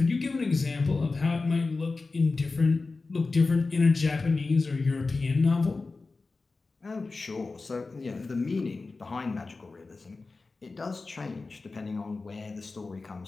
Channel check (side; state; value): right; quieter; 3.8 dB